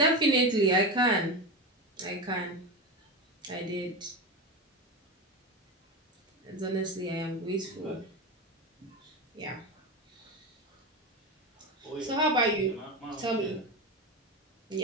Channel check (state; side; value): normal; both; correlation 0.19